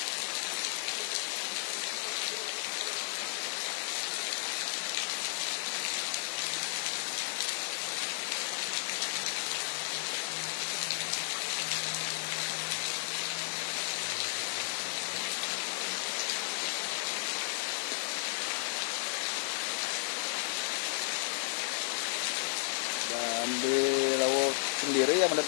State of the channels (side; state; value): right; silent; digital silence